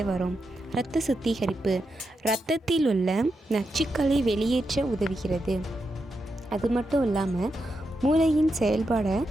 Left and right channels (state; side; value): normal; both; correlation 0.86